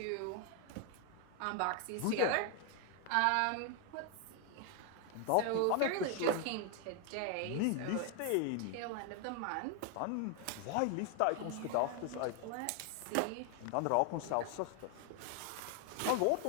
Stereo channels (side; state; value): both; different; correlation 0.01